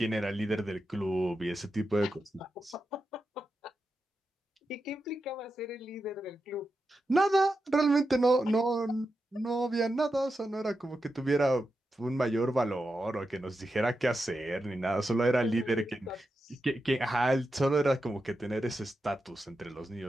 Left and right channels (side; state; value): both; normal; correlation 0.89